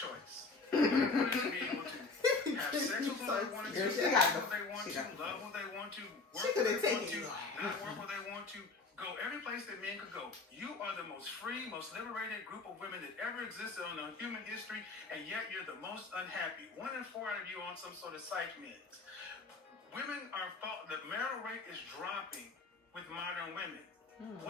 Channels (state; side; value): quieter; right; 4.0 dB